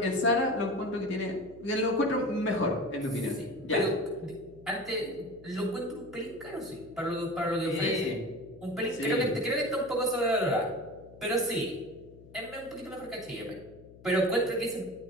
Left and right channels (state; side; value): noise; left; hum, 21 dB below the sound